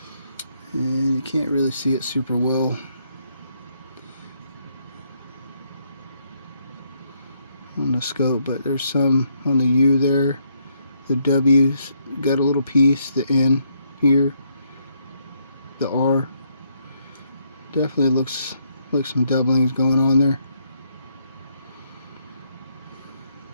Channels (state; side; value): inverted; both; correlation -0.74